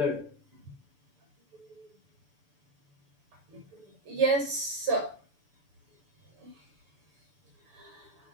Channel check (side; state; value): left; late; 6.9 ms